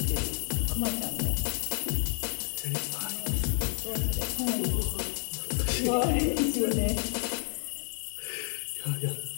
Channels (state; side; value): silent; right; 58 dB below the other